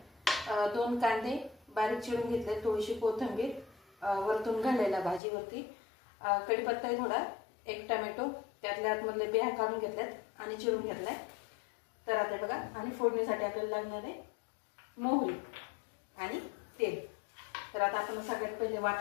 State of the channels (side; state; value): right; drops out; at 5.2 s